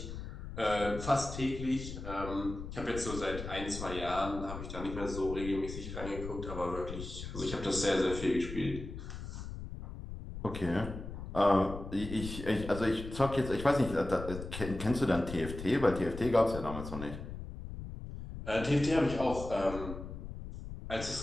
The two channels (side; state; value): left; noise; rumble, 9 dB below the sound